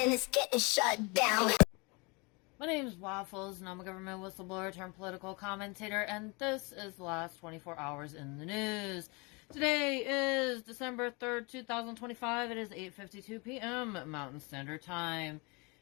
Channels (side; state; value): right; quieter; 29.1 dB